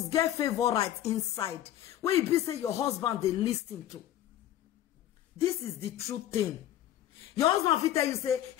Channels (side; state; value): right; quieter; 12.3 dB